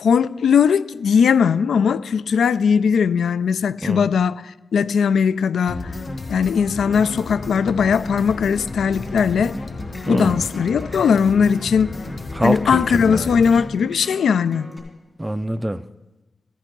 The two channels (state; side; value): quieter; right; 5.8 dB